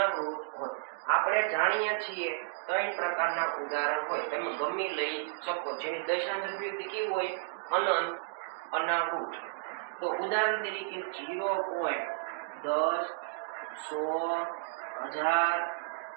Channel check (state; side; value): silent; left; digital silence